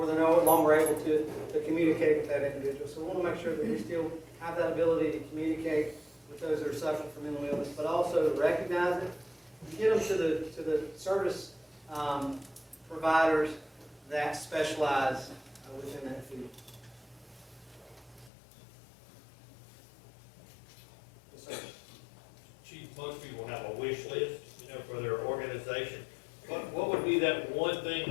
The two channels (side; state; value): right; drops out; at 18.3 s